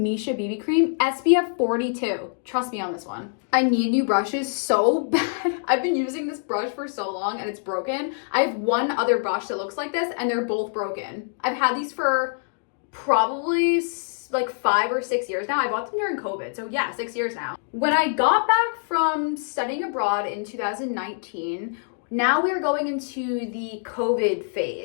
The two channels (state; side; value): silent; right; digital silence